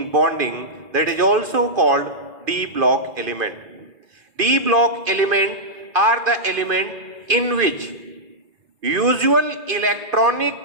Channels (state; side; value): late; left; 2.5 ms